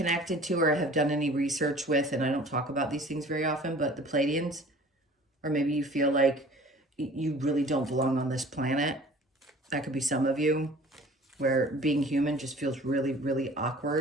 to or have done any research with, and I don't talk about these things very often, but the Pleiadians, or maybe you feel like you really don't belong on this planet. That could be some of you, where being human just feels really, really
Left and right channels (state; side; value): normal; both; correlation 0.47